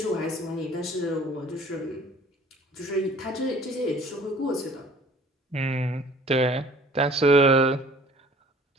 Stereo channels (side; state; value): both; normal; correlation 0.51